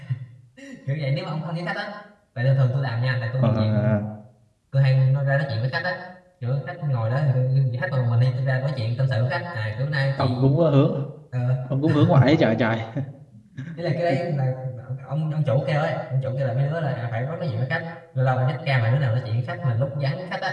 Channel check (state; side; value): identical; both; correlation 1.00